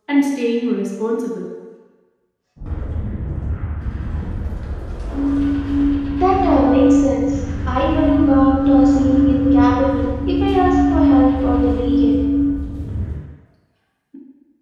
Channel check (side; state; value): both; identical; correlation 1.00